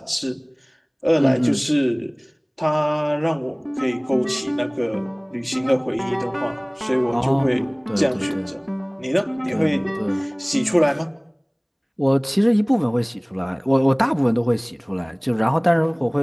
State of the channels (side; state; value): both; identical; correlation 1.00